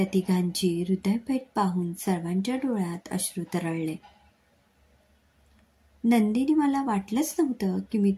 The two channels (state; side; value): identical; both; correlation 1.00